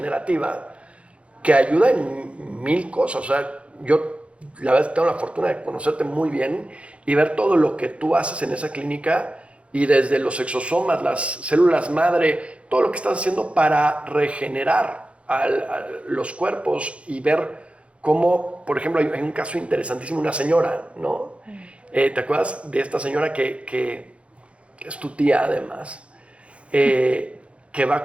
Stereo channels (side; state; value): left; late; 0.061 ms